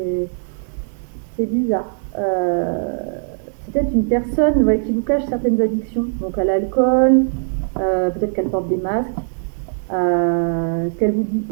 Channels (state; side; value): silent; left; 66 dB below the other